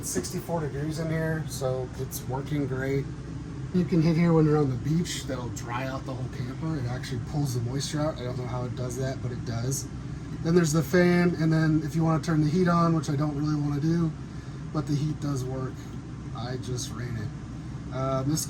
64 degrees in here, so it's working great. You can hit here when you're on the beach. That'll dry out the whole camper. It actually pulls the moisture out. I don't know how it does that, but it does. Then there's the fan, and then if you want to turn the heat on, which I don't really want to do, but the heat does work. I just ran it. This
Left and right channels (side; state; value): both; identical; correlation 1.00